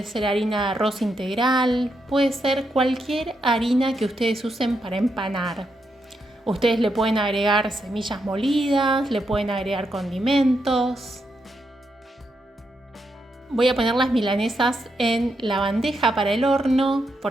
ser harina de arroz integral, puede ser cualquier harina que ustedes usen para empanar. Ustedes le pueden agregar semillas molidas, le pueden agregar condimentos. Voy a poner las milanesas en la bandeja para el horno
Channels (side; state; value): both; normal; correlation 0.82